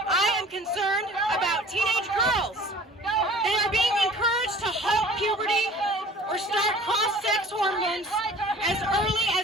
am concerned about teenage girls. They are being encouraged to halt puberty or start cross-sex hormones as early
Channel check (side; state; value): both; normal; correlation 0.47